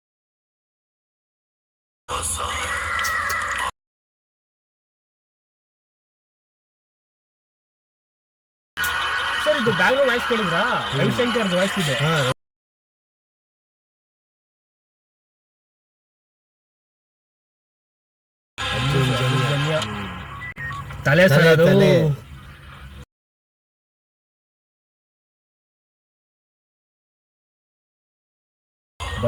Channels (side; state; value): both; identical; correlation 1.00